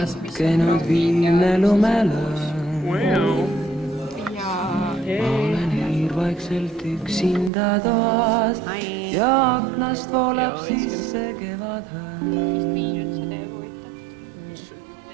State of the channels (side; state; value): left; drops out; at 7.5 s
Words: viimne lumelõõn. Olen hiirvaikselt üksinda toas ja aknast voolab sisse kevadhõõn.